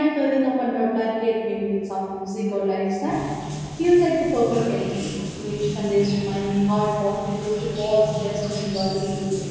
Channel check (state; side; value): identical; both; correlation 1.00